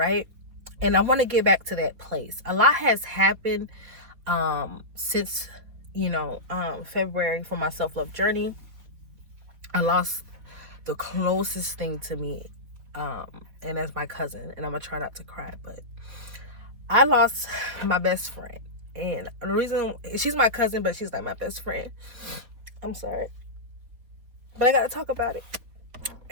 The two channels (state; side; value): late; left; 4.3 ms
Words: And I want to get back to that place. A lot has happened since, February for my self-love journey. I lost the closest thing to me, and that's my cousin. And I'm going to try not to cry, but I lost my best friend. And the reason, she's my cousin, but she's like my best friend. I'm sorry. But I got to talk about it.